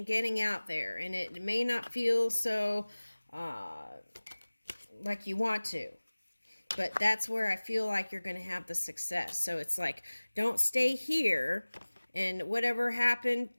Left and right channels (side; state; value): both; inverted; correlation -1.00